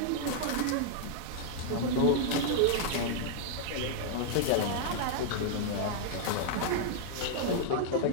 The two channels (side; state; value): both; different; correlation -0.01